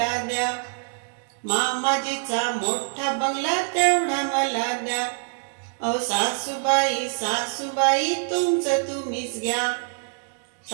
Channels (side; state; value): left; silent; 62 dB below the other